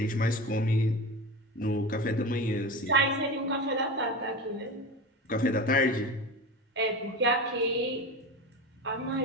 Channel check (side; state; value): both; normal; correlation 0.27